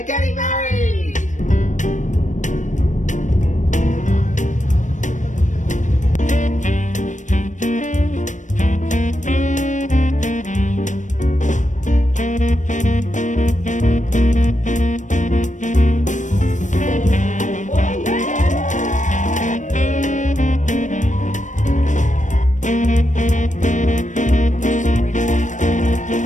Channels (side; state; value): right; late; 0.36 ms